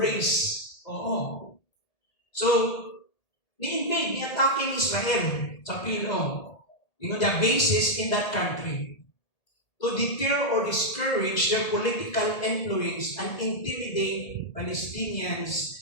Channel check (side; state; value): right; late; 1.8 ms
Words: Oo. So, ni-invade, ni-attacking Israel sa PLO. The bases in that country to deter or discourage their political influence and intimidate Palestinians